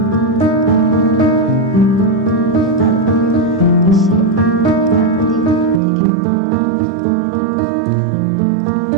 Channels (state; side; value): drops out; left; at 5.8 s